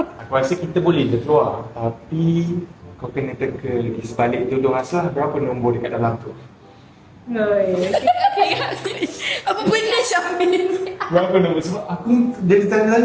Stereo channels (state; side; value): identical; both; correlation 1.00